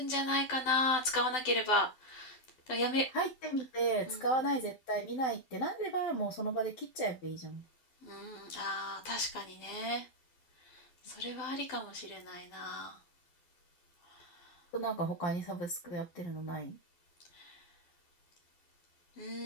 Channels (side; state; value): right; late; 12 ms